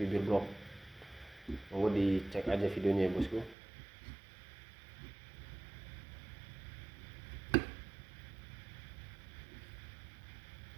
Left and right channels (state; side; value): drops out; left; at 3.6 s